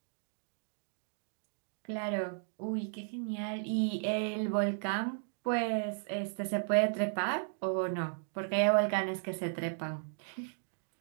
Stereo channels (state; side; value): silent; left; digital silence